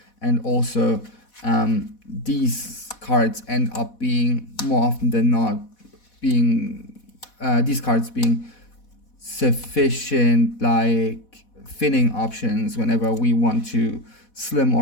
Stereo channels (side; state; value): right; late; 4.1 ms